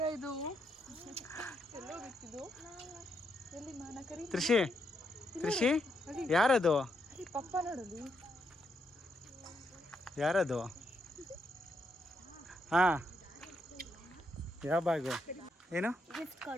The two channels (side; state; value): both; normal; correlation 0.79